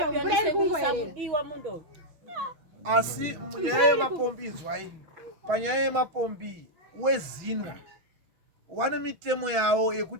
mvura iri kungoerera. Asi munyaya yemapombi izwai, panyaya yemapombi wezinwa wane mitemo yawo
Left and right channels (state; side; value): late; left; 6.1 ms